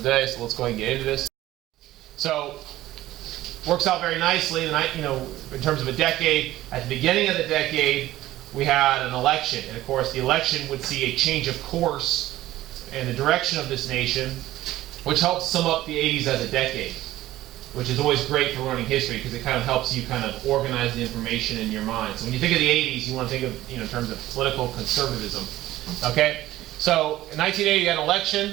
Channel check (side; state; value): left; quieter; 15.3 dB